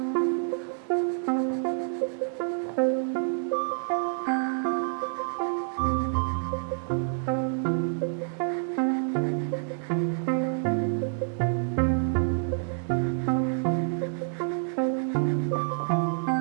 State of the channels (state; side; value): silent; left; digital silence